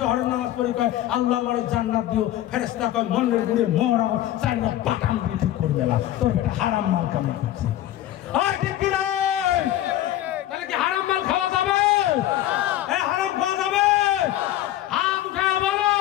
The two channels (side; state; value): right; quieter; 13.4 dB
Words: জহরের নামাজ পড়ি কয় আল্লাহ বড় জান্নাত দিও ফেরেশতা কয় মনের গুড়ে মরা চাইনা বাটাম দিয়ে ঠিক করে দিলাম তোর এটা হারাম মাল কামাই করছিস ঠিক কি নাই তাহলে কি হারাম মাল খাওয়া যাবে হারাম খাওয়া যাবে হাত উঠে বলো